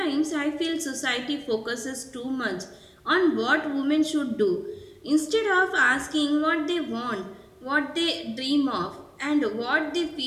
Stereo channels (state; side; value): identical; both; correlation 1.00